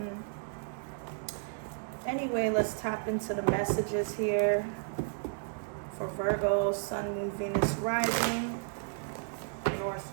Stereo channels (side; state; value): left; silent; digital silence